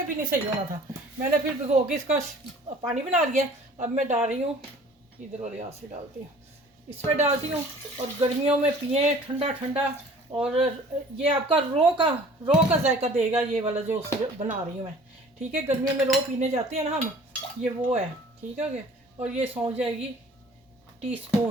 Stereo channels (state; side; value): normal; both; correlation 0.49